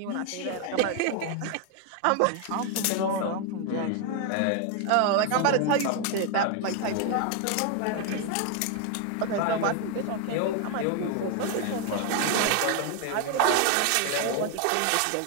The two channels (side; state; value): both; different; correlation 0.01